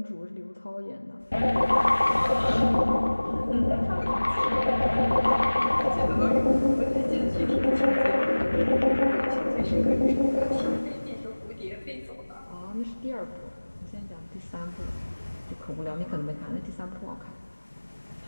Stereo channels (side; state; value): both; inverted; correlation -1.00